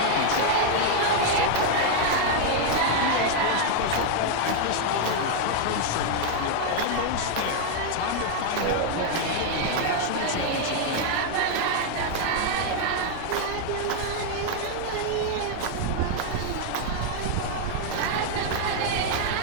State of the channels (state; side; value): different; both; correlation 0.00